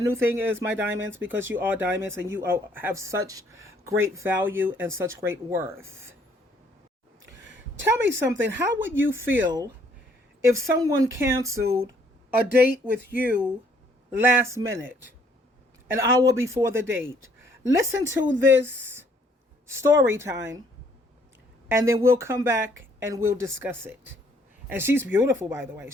thing is my diamonds because you are diamonds and you have such great value and such great worth. Tell me something. How would you feel if someone canceled a date with you last minute, an hour before the date? Listen to this story time and then we'll come back and we'll discuss it. And she's beautiful, by the way.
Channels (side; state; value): both; normal; correlation 0.64